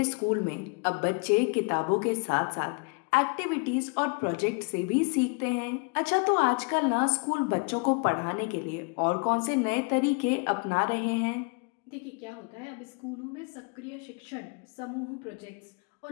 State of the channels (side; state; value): right; quieter; 33.5 dB